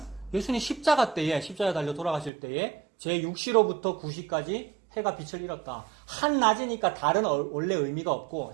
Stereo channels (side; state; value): left; drops out; at 2.3 s